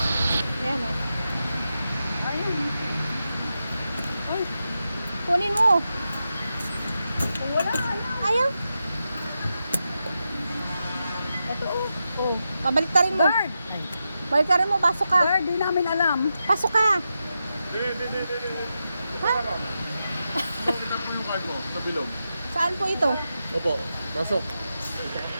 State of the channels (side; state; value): both; inverted; correlation -0.88